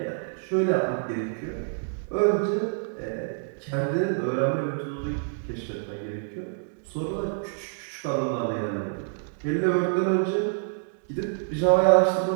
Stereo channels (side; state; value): left; silent; digital silence